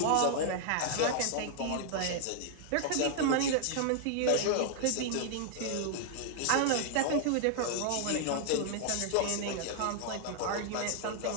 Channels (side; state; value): both; different; correlation -0.01